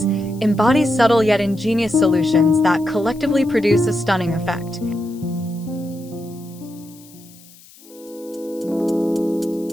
embodies subtle yet ingenious solutions that collectively produce a stunning effect.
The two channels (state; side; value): noise; left; hiss, 24 dB below the sound